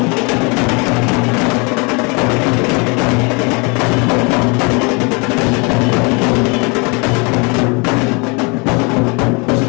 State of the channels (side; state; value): right; quieter; 31.0 dB